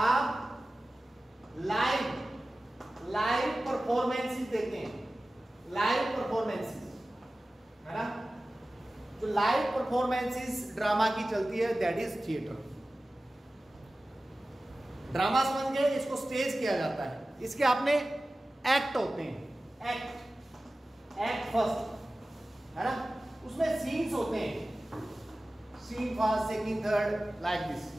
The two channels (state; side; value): normal; both; correlation 0.96